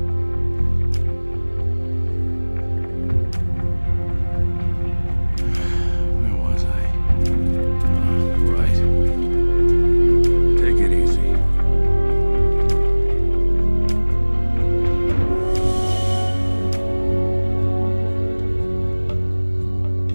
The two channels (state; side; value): inverted; both; correlation -1.00